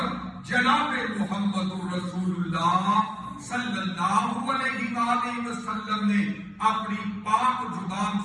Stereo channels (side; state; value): both; identical; correlation 1.00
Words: جناب محمد الرسول اللہ صلی اللہ علیہ وآلہ وسلم نے اپنی پاک زبان